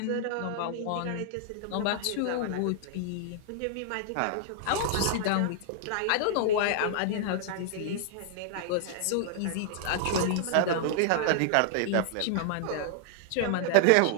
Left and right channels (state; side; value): different; both; correlation -0.01